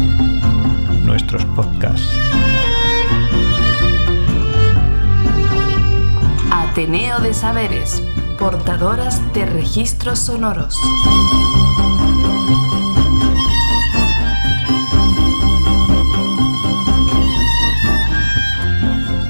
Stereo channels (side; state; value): both; inverted; correlation -1.00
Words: Nuestros podcasts. Ateneo de Saberes, portadoras de registros sonoros.